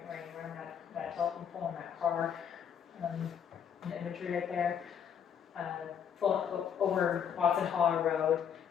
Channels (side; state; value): right; quieter; 8.1 dB